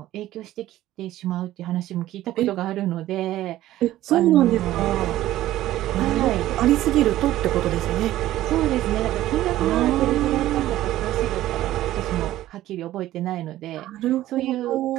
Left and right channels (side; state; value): left; quieter; 14.5 dB